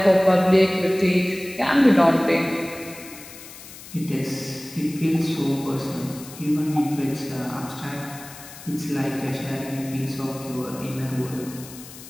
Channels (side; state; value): left; noise; hiss, 16 dB below the sound